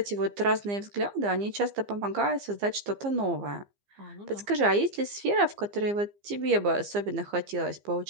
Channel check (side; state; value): left; late; 15 ms